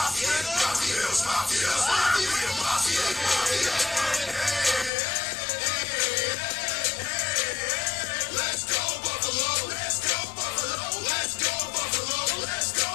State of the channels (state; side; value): drops out; right; at 4.9 s